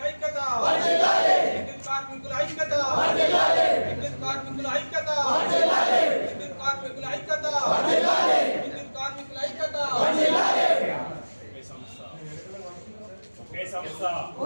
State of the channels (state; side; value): inverted; both; correlation -1.00